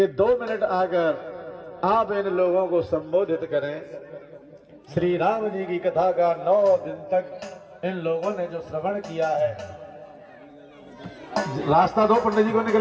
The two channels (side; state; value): both; identical; correlation 1.00